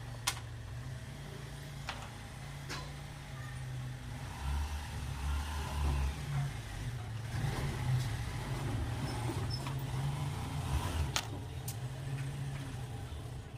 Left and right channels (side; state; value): both; identical; correlation 1.00